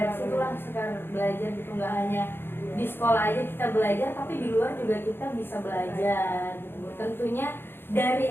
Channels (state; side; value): late; right; 0.10 ms